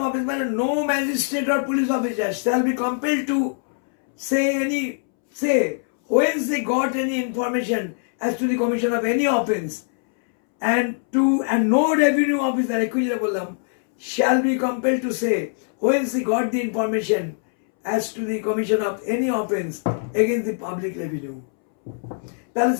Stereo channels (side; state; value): right; silent; 64 dB below the other